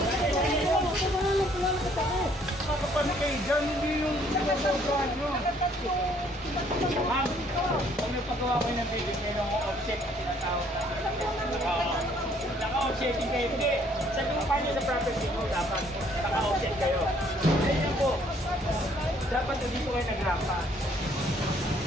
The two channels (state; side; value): normal; both; correlation 0.63